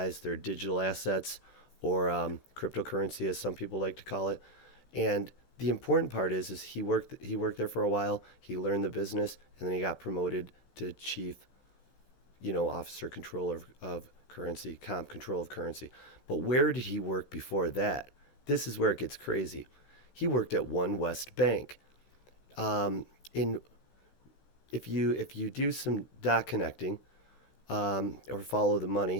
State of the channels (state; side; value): late; right; 15 ms